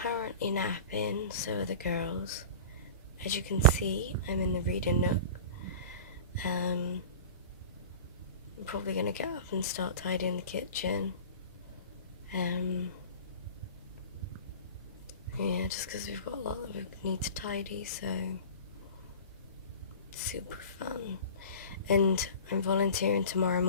currently napping, so are the girls. As you can see, I'm in the reading nook. I'm probably going to get up and start tidying the kitchen. Yeah, just because we've got a lot that we need to tidy, so super fun. And I'm volunteering tomorrow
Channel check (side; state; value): both; inverted; correlation -0.36